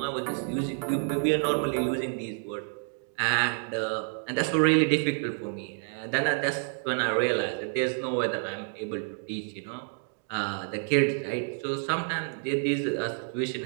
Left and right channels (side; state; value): left; silent; 57 dB below the other